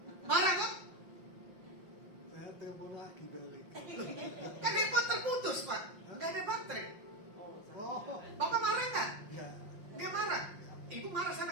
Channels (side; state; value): left; late; 5.7 ms